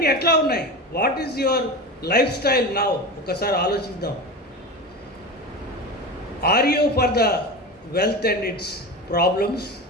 ఎట్లా ఉన్నాయి? What is your life style now? ఒకసారి ఆలోచిద్దాం. Are you for the wealth and its problems,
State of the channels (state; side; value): normal; both; correlation 0.26